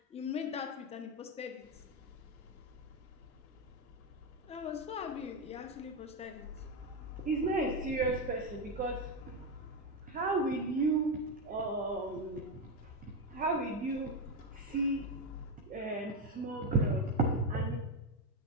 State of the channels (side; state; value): both; normal; correlation 0.10